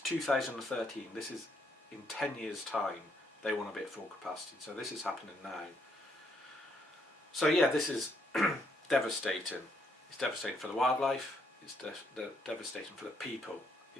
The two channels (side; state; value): both; normal; correlation 0.73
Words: This is in 10 years' time. They want to be at full capacity. So this is happening now. So yeah, this is devastating. It's devastating for the wildlife. It's devastating for the people.